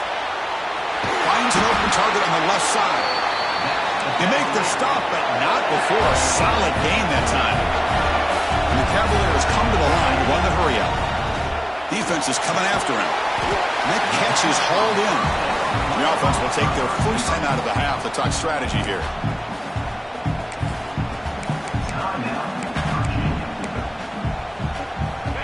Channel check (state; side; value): identical; both; correlation 1.00